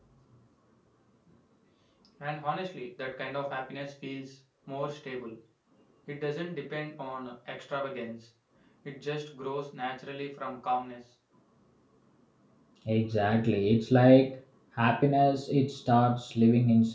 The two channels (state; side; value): identical; both; correlation 1.00